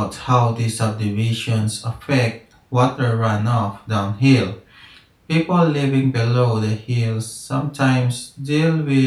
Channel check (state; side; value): identical; both; correlation 1.00